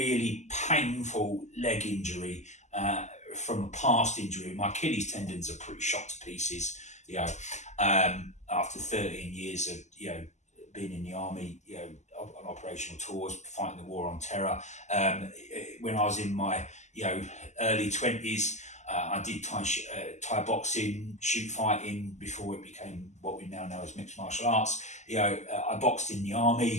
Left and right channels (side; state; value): right; late; 0.34 ms